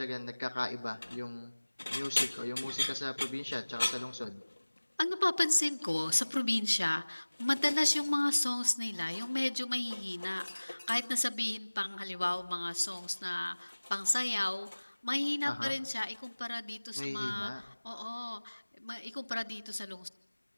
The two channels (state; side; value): inverted; both; correlation -1.00